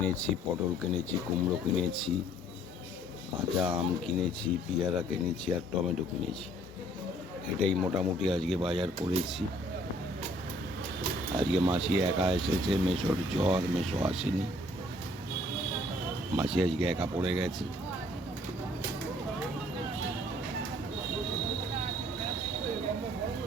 পটল কিনেছি, কুমড়ো কিনেছি, কাঁচা আম কিনেছি, পেয়ারা কিনেছি আর টমেটো কিনেছি। এটাই মোটামুটি আজকে বাজার করেছি। আজকে মাসি একা এসেছে, মেসোর জ্বর, মেসো আসেনি। মাসি আজকে একা পড়ে গেছে।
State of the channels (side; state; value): both; normal; correlation 0.59